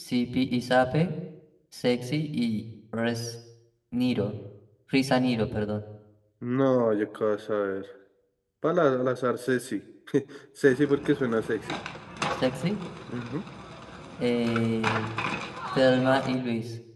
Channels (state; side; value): identical; both; correlation 1.00